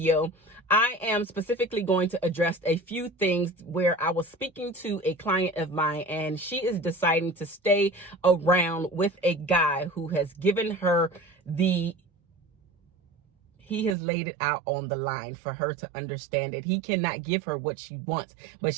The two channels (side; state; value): left; drops out; at 14.0 s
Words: I am specifically going to address a few things where I was speaking to a client of mine and she is deciding to stay around with a guy who has given her he has laid it out on the line for her to understand that he cannot give her what she wants, but